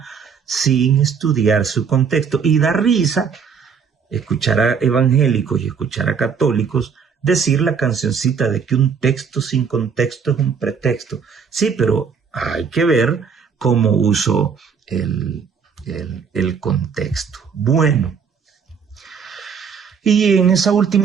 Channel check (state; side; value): quieter; left; 6.3 dB